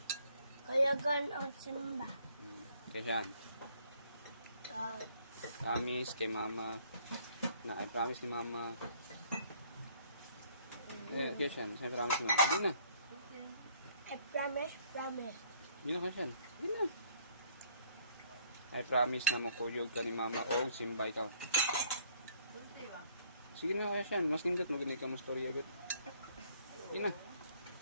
Kuyugan o simba. Kaya siyan. Promise kay mama. Na I promise ni mama. Kaya siyan. Saan promise ni mama? Di na. I promise. Di na kaya siyan. Di na. I promise na makuyog ka ni mama o Simba ikaw. Sige na kaya siyan. Mas nindot maganig ka mas storya agad. Di na.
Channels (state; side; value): inverted; both; correlation -0.62